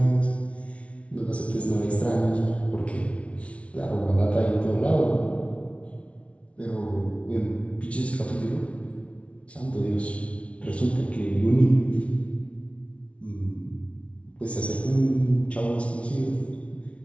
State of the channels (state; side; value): late; right; 0.062 ms